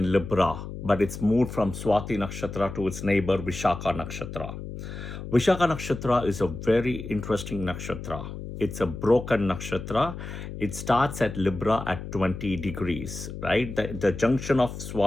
Libra, but it's moved from Swati Nakshatra to its neighbor Vishakha Nakshatra. Vishakha Nakshatra is a very interesting nakshatra. It's a broken nakshatra. It starts at Libra at 20 degrees, right? The junction of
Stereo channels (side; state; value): left; noise; hum, 9 dB below the sound